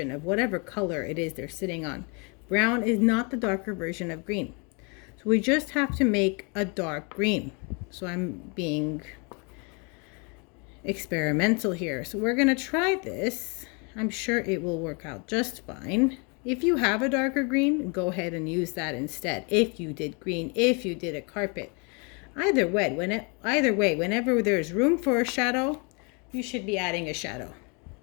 of whatever color it is they're sitting on. Brown is not the darker version of green. So we just have to make a dark green. So I'm being experimental here. So we're going to try this. I'm sure it will work out just fine. If you have a darker green, go ahead and use that instead. If you did green, if you did a carpet. Either way, whenever there's room for a shadow, you should be adding a shadow.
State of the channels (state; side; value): quieter; right; 33.3 dB